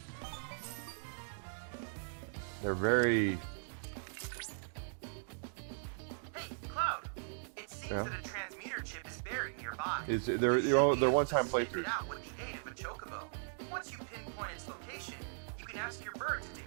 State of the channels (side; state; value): left; silent; digital silence